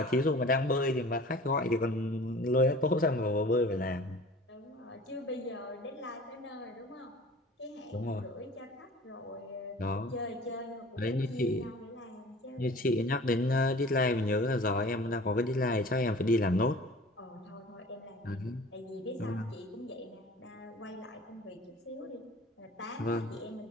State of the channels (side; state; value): both; normal; correlation 0.44